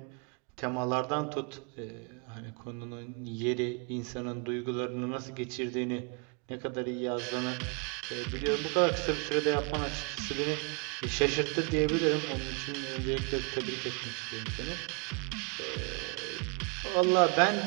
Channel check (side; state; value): left; quieter; 35.9 dB